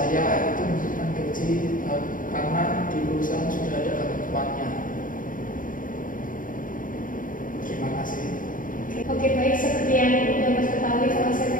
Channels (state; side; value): late; right; 0.39 ms